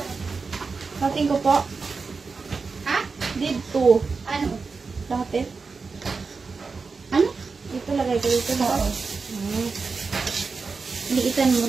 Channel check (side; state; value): left; quieter; 4.6 dB